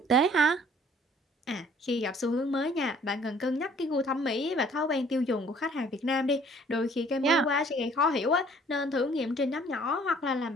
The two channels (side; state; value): both; normal; correlation 0.56